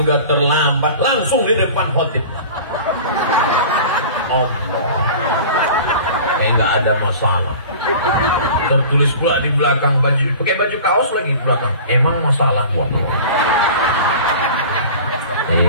udah terlambat, langsung di depan khotib. Allah, nggak ada masalah. Tertulis pula di belakang baju, pakai baju kaos lagi di belakang. Emang masalah buat lo?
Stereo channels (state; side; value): inverted; both; correlation -0.39